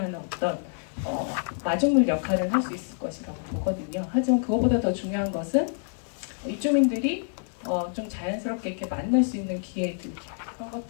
어떤 마중물 역할을 할 수 있을 것이라고 보거든요. 하지만 그것보다 더 중요한 것은 입주민들이 좀 자연스럽게 이렇게 만날 수 있는 기회들 그런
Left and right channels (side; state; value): right; silent; 60 dB below the other